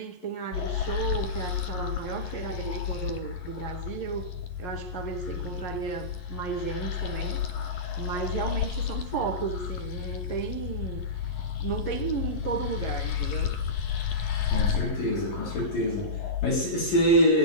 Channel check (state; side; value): late; right; 11 ms